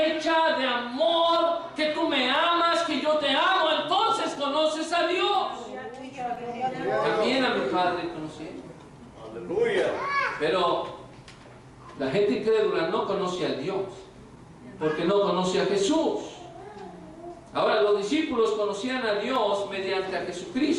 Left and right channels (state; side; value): identical; both; correlation 1.00